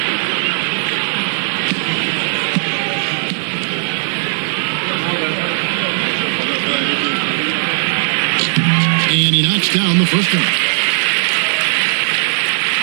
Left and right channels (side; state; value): left; silent; digital silence